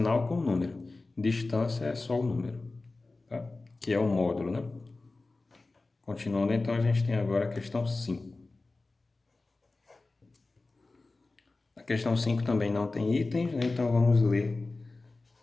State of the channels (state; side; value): quieter; right; 3.4 dB